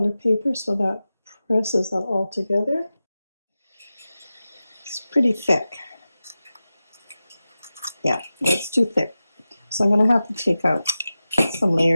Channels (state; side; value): inverted; both; correlation -0.94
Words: paper so that presses that all together. It's pretty thick. Yeah, that's too thick. So I'm going to have to take out some